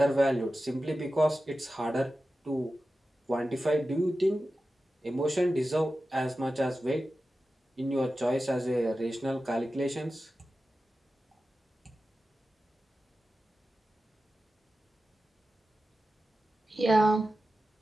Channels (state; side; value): normal; both; correlation 0.93